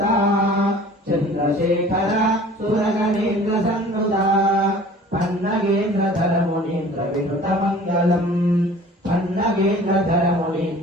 चन्द्रशेखर सुरगणेन्द्र सन्नुता पन्नगेन्द्रधर मुनीन्द्र विनुत मङ्गलम् पन्नगेन्द्रधर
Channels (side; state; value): both; normal; correlation 0.47